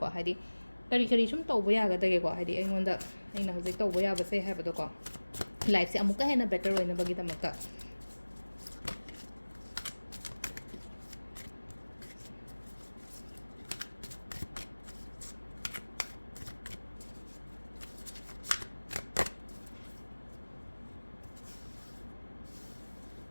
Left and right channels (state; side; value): inverted; both; correlation -1.00